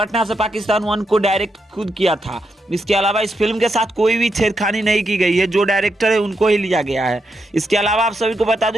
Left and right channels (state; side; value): normal; both; correlation 0.83